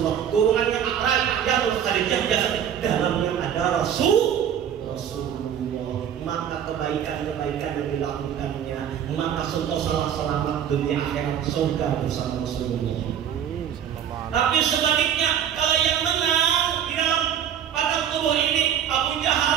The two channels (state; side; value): quieter; left; 9.2 dB